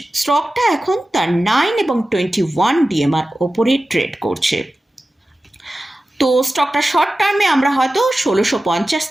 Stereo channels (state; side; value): normal; both; correlation 0.95